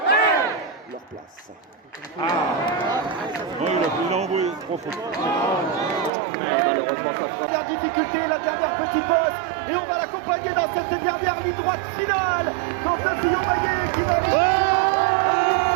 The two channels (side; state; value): left; drops out; at 6.1 s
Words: leur place. Il a envoyé 3 fois. Malheureusement, ça fera. Dernière difficulté, la dernière petite bosse, et on va l'accompagner dans cette dernière ligne droite finale. Quand un Fillon Maillet qui va.